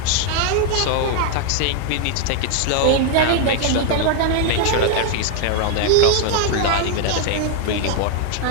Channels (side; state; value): both; different; correlation 0.00